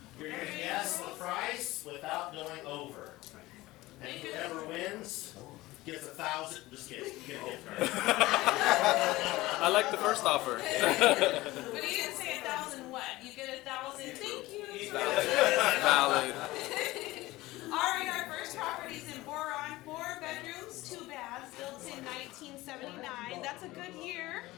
You're going to guess the price without going over. And whoever wins gets 1,000. Just kidding. You get a gift card. I like the first offer. But you didn't say 1,000 what? You get 1,000. Thank you. Valid. All right, our first property is in Boron, 4 bedrooms, 2 baths, built in 1979. That's a good year.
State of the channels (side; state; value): right; quieter; 18.8 dB